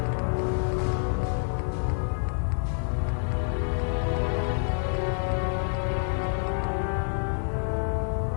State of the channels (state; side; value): silent; right; 56 dB below the other